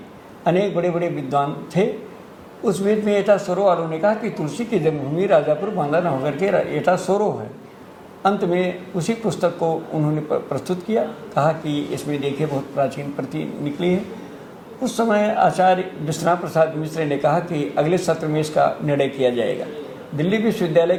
अनेक बड़े बड़े विद्वान थे। उस बीच में एटा सोरो वालों ने कहा कि तुलसी की जन्मभूमि राजापुर बांदा न होकर के एटा सोरो है। अंत में उसी पुस्तक को उन्होंने प्रस्तुत किया, कहा कि इसमें देखिए बहुत प्राचीन प्रति निकली है। उस समय आचार्य विश्वनाथ प्रसाद मिश्र ने कहा कि अगले सत्र में इसका निर्णय किया जाएगा। दिल्ली विश्वविद्यालय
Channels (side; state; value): both; identical; correlation 1.00